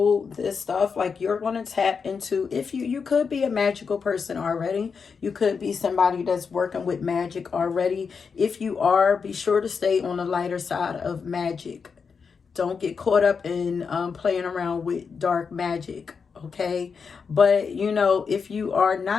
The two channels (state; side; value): quieter; right; 5.7 dB